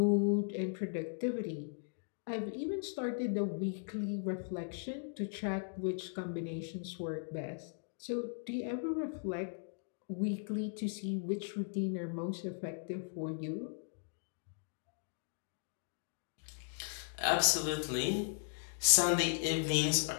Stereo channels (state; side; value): silent; right; digital silence